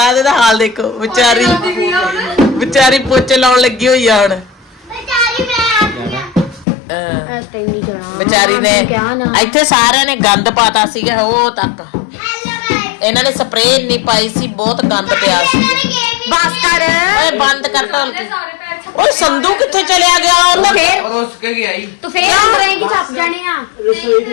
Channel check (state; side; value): drops out; right; at 6.7 s